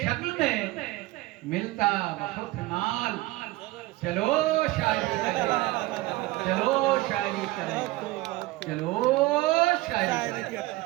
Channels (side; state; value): left; quieter; 19.5 dB